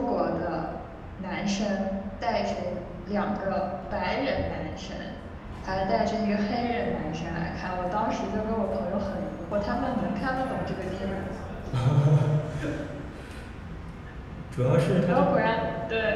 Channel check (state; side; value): identical; both; correlation 1.00